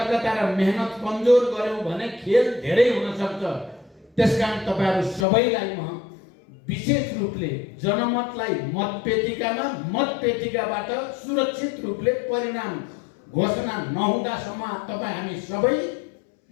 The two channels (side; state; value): right; drops out; at 5.2 s